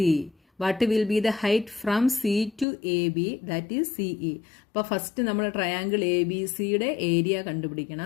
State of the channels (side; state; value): right; drops out; at 2.7 s